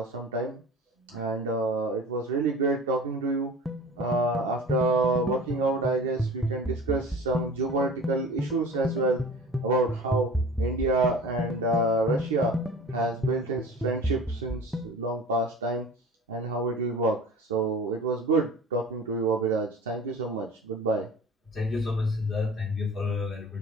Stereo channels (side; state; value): both; normal; correlation 0.40